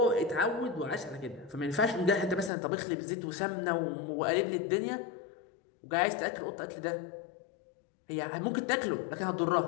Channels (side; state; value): right; drops out; at 2.5 s